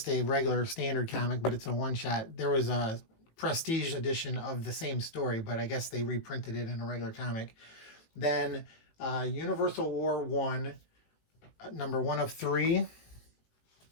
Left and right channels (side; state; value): right; late; 18 ms